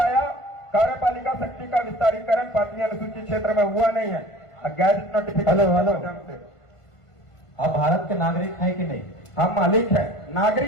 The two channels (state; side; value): late; right; 1.5 ms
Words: कार्यपालिका शक्ति का विस्तारीकरण 5वीं अनुसूचित क्षेत्र में हुआ नहीं है। गैजेट नोटिफिकेशन से आप भारत के नागरिक हैं कि नहीं? हम मालिक है।